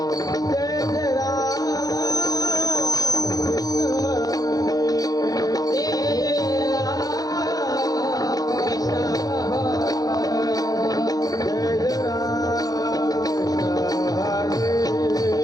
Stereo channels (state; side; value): late; right; 0.18 ms